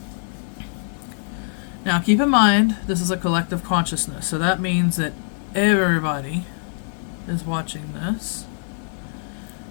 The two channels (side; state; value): right; silent; 61 dB below the other